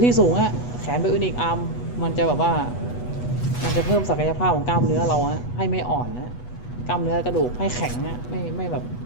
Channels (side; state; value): right; late; 8.2 ms